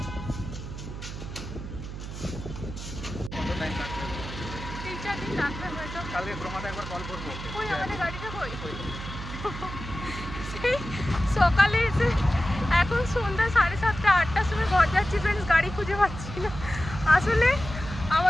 সকালে এসে এখন সন্ধ্যা 7:30 8টার সময় ঘর যাচ্ছি ফ্রেন্ডস, গাড়ি খুঁজে পাচ্ছি না। আসলে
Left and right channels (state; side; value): noise; right; hum, 9 dB below the sound